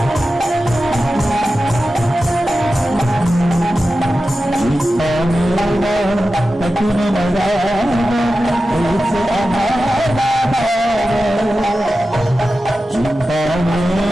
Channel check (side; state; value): both; normal; correlation 0.93